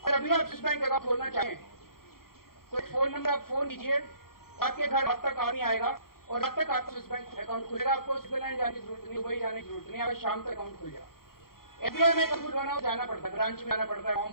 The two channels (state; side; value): late; right; 0.93 ms